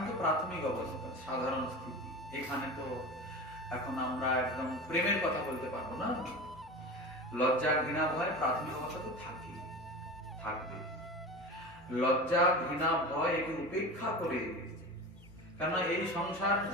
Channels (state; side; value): normal; both; correlation 0.30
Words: তো প্রাথমিক অবস্থা, সাধারণ স্থিতি। এখানে তো এখন আমরা একদম প্রেমের কথা বলতে পারবো না। লজ্জা, ঘৃণা, ভয় প্রাথমিক অবস্থা তো থাকবে। লজ্জা, ঘৃণা, ভয় একে উপেক্ষা করে, কেন এই সংসার